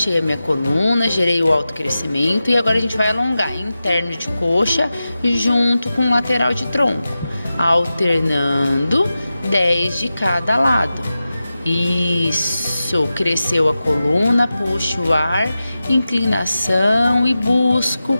a minha coluna, gerei o autocrescimento e agora a gente vai alongar interno de coxa junto com lateral de tronco, alternando 10 de cada lado. Isso, cresceu a coluna, puxo o ar, inclinação e busco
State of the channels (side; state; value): both; inverted; correlation -0.93